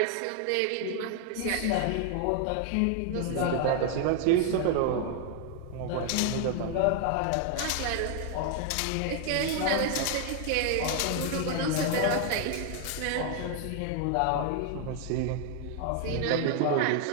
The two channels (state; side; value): different; both; correlation 0.00